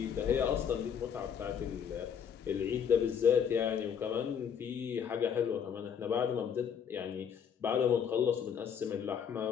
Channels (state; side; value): quieter; right; 7.7 dB